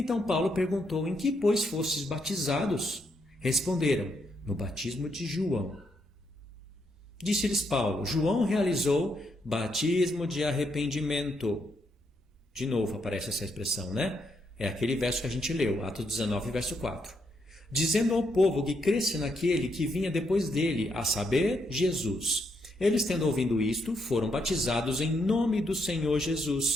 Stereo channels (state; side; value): normal; both; correlation 0.77